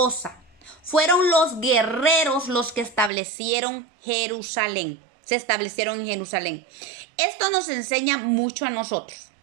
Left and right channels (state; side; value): drops out; left; at 3.1 s